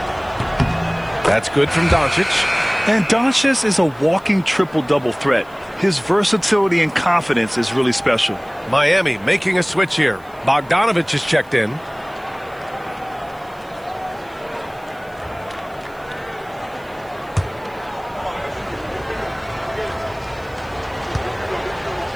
That's good from Doncic. And Doncic is a walking triple-double threat. His versatility and confidence is really special. Miami making a switch here. Bogdanovich is checked in.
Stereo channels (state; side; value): noise; right; hiss, 29 dB below the sound